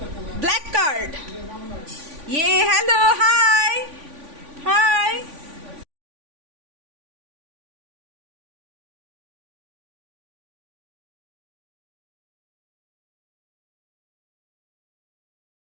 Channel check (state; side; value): late; left; 3.5 ms